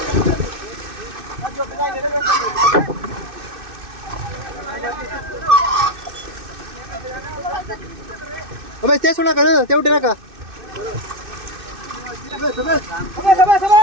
Sabes, te suena que no, te udah nak? Sabes, sabes. Sabes, sabes,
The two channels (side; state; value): left; late; 2.6 ms